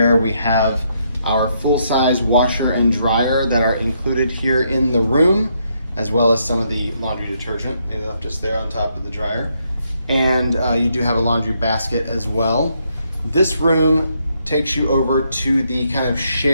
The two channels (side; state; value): both; inverted; correlation -0.75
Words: We have our full-size washer and dryer that are included here in the room, as well as some of the laundry detergent. They left us there on top of the dryer. And you do have a laundry basket as well. This room takes you over to the kind of